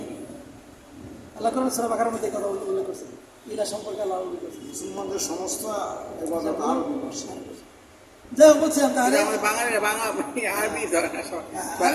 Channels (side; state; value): both; identical; correlation 1.00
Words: আল্লাহ কোরআন সূরা বাকারার মধ্যে এই কথা উল্লেখ করছে, ইলা সম্পর্কে আল্লাহ উল্লেখ করছে। মুসলমানদের সমস্ত ইবাদত আরবি ভাষা। যাই হোক, বলছিলাম তাহলে আমাদের বাঙালিরা বাংলা আরবি ধরে না, সব বা